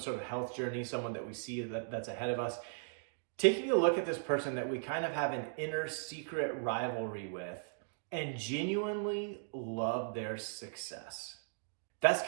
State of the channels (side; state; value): left; silent; digital silence